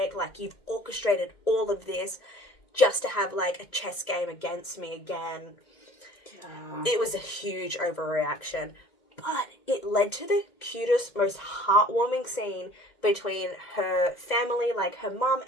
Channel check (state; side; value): late; right; 2.1 ms